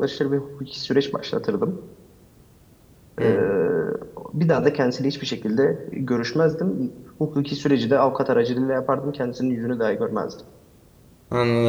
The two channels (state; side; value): identical; both; correlation 1.00